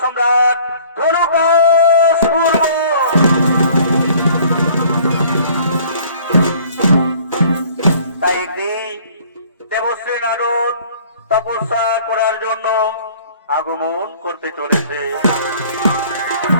সম্রাট ধনুকাসুর। তাই একদিন দেবশ্রী নারদ তপস্যা করার জন্য আগমন করতে চলেছে।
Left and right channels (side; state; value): both; inverted; correlation -0.54